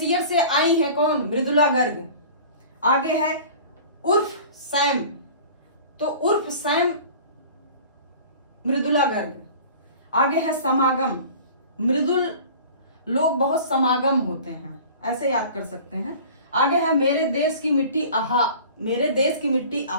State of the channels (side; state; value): both; inverted; correlation -0.42